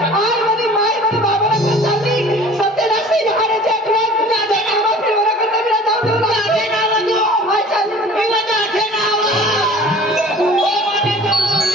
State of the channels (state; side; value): normal; both; correlation 0.45